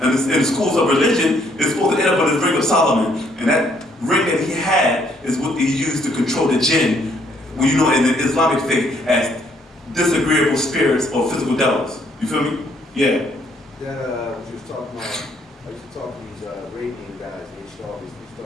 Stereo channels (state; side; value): normal; both; correlation 0.68